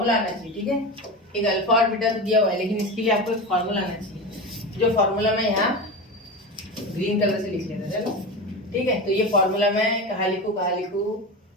आना चाहिए, ठीक है, एक अल्फा और बीटा तो दिया हुआ है, लेकिन इसके लिए आपको एक फॉर्मूला आना चाहिए, जो फॉर्मूला मैं यहाँ ग्रीन कलर से लिख लेता, चलो ठीक है। तो ये फॉर्मूला मैं कहाँ लिखूं,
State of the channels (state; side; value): normal; both; correlation 0.24